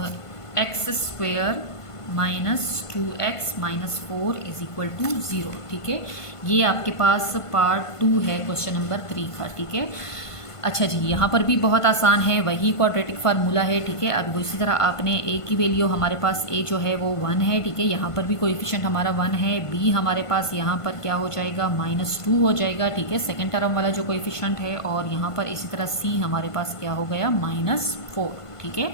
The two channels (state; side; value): late; right; 1.5 ms